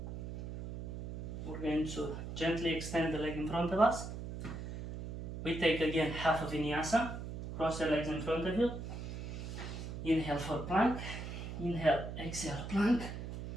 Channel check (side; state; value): right; noise; hum, 7 dB below the sound